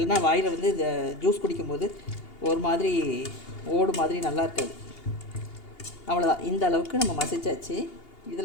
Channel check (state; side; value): late; right; 2.8 ms